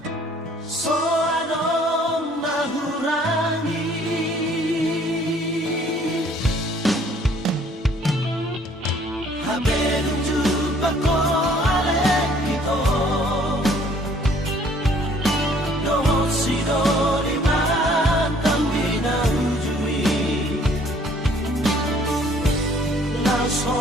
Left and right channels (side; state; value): both; normal; correlation 0.59